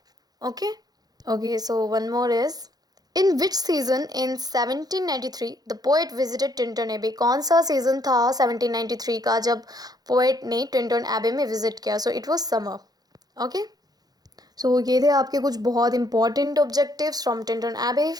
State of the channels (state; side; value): late; left; 0.19 ms